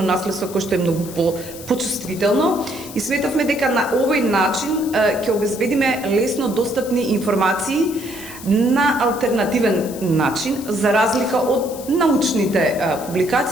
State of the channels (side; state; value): left; noise; hiss, 15 dB below the sound